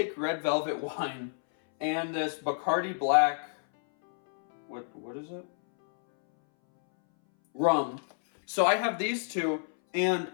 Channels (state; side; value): silent; right; 58 dB below the other